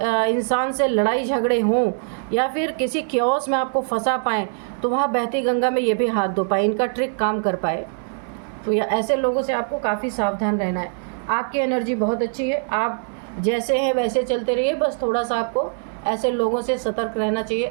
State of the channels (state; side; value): silent; left; 60 dB below the other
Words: इंसान से लड़ाई झगड़े हों या फिर किसी क्योस में आपको फंसा पाएँ, तो वहाँ बहती गंगा में ये भी हाथ धो पाए, इनका ट्रिक काम कर पाए। तो या ऐसे लोगों से आपको काफ़ी सावधान रहना है। आपकी एनर्जी बहुत अच्छी है, आप जैसे हैं वैसे चलते रहिए, बस थोड़ा सा आपको ऐसे लोगों से सतर्क रहना चाहिए।